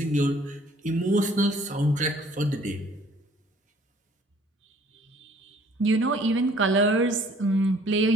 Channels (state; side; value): normal; both; correlation 0.57